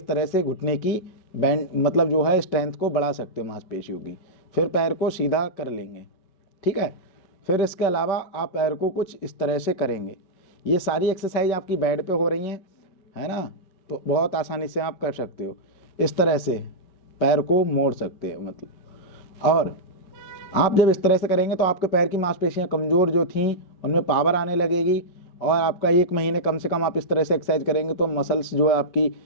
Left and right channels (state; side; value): late; right; 5.3 ms